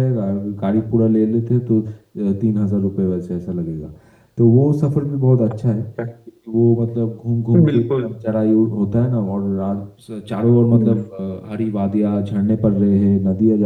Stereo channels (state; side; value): identical; both; correlation 1.00